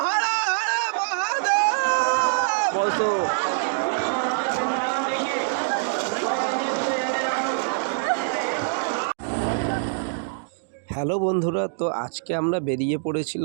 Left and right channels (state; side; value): silent; left; digital silence